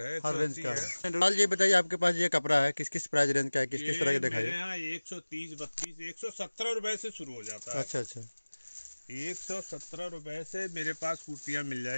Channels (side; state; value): both; inverted; correlation -1.00